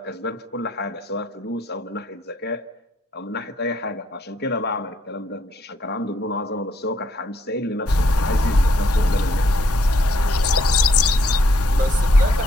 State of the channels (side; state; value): both; normal; correlation 0.71